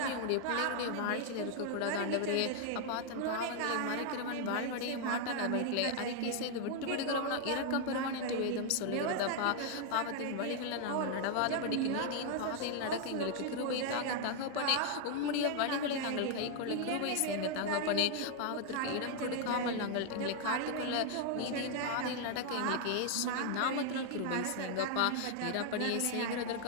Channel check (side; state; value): both; different; correlation 0.00